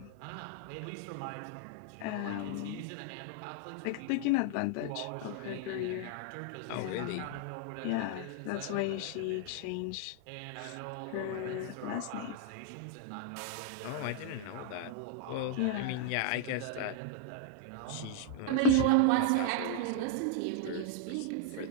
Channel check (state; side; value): different; both; correlation -0.01